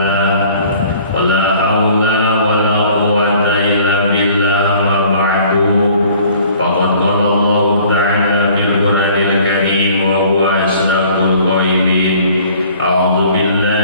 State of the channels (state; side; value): inverted; both; correlation -0.53